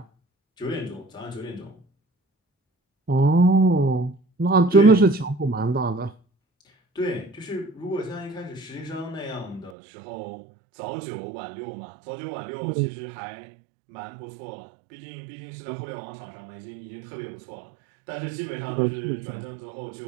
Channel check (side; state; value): left; drops out; at 9.8 s